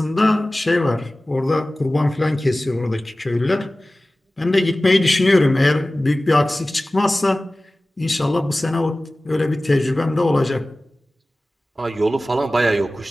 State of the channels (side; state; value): both; normal; correlation 0.97